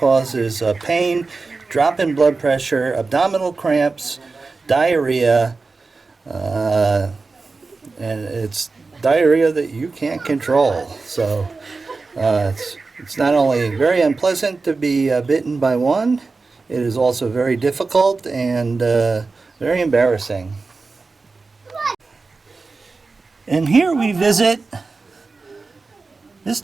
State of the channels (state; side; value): quieter; left; 4.0 dB